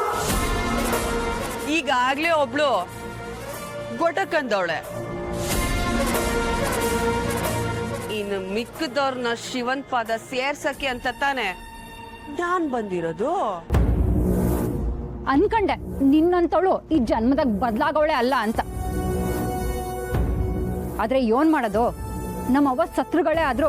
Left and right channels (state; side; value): identical; both; correlation 1.00